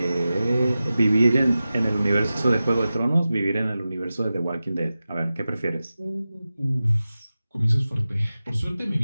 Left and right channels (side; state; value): both; inverted; correlation -0.94